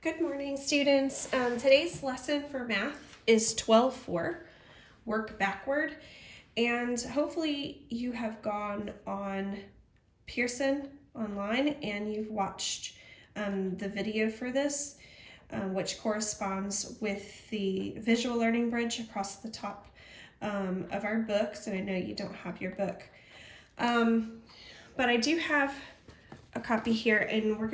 Good morning, students. Today's lesson for math is 12:4, work backward, and hopefully you have gone on Pearson online and you've watched the video for this, which corresponds with the visual learning bridge across the top of our books, and I know you don't have your book. But I do have a copy here, and we're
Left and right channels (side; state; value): both; identical; correlation 1.00